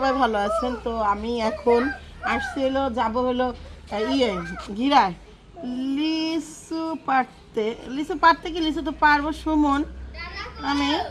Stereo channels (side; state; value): both; identical; correlation 1.00